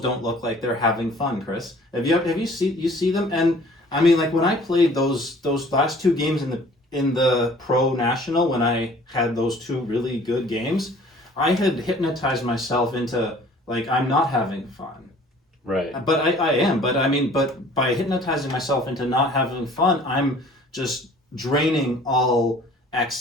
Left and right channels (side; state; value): both; normal; correlation 0.51